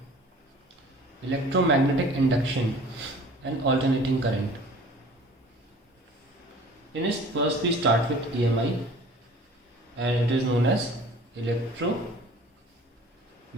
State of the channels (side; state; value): both; normal; correlation 0.47